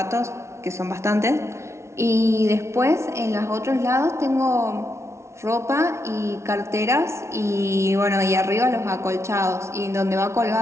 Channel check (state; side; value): late; left; 0.13 ms